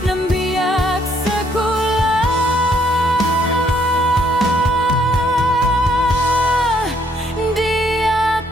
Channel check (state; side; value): normal; both; correlation 0.69